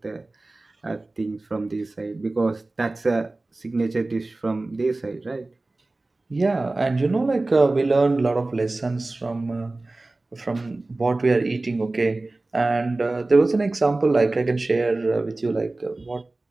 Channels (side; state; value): left; quieter; 3.0 dB